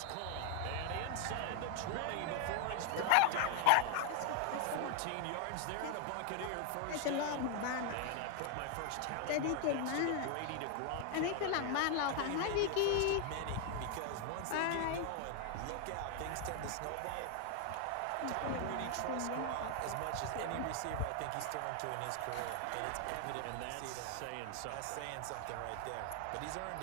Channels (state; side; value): different; both; correlation 0.00